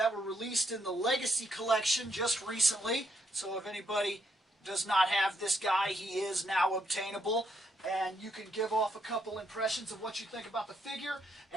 were released in the Legacy Collection just recently. So if anybody does not have this guy, he is now obtainable. And you can give off a couple impressions of what you think about the figure.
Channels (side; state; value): both; normal; correlation 0.75